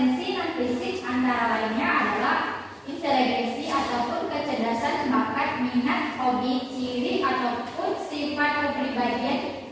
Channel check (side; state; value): both; identical; correlation 1.00